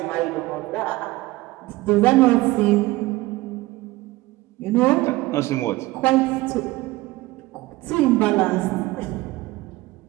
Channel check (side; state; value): left; quieter; 19.5 dB